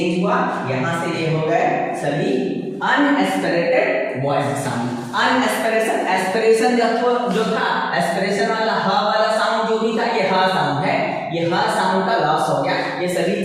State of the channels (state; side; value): identical; both; correlation 1.00